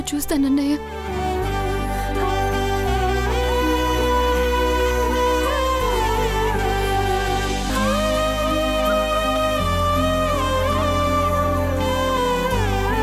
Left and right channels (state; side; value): identical; both; correlation 1.00